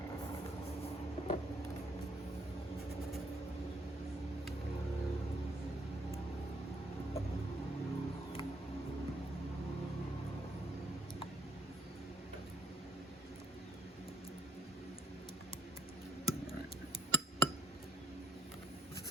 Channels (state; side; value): normal; both; correlation 0.67